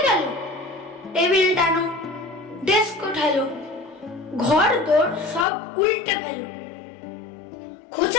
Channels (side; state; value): right; drops out; at 5.5 s